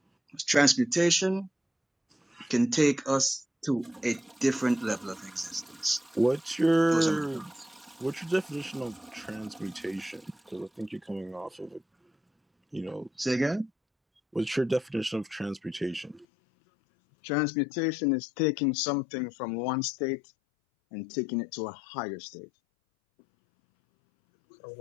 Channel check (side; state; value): right; drops out; at 16.2 s